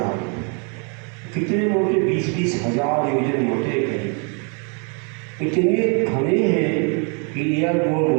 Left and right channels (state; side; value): quieter; left; 37.5 dB